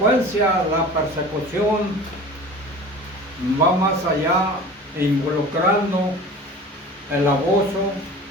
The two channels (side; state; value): both; normal; correlation 0.39